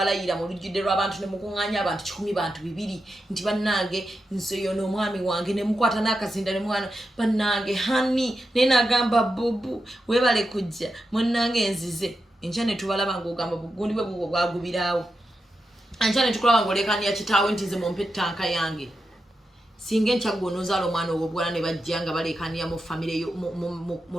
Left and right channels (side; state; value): both; normal; correlation 0.88